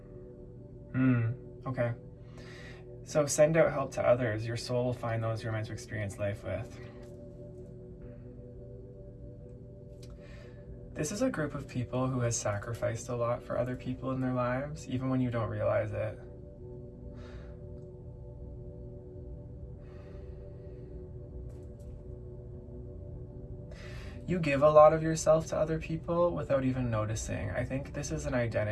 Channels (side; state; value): both; identical; correlation 1.00